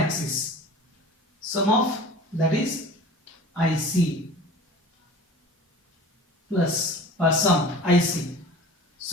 Sum of that is IC plus sum IC,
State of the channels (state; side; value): normal; both; correlation 0.41